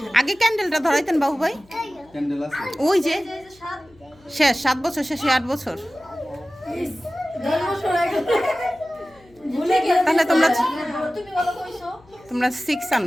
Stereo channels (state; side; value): noise; left; hum, 29 dB below the sound